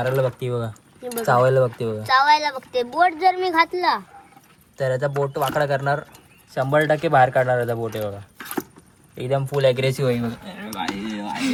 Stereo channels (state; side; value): identical; both; correlation 1.00